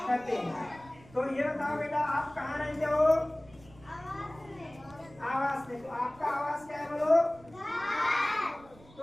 हैं। तो ये बताओ बेटा, आप कहाँ रहते हो? आवास में। तो आपका आवास क्या है बोलो? तो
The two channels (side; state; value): right; noise; rumble, 23 dB below the sound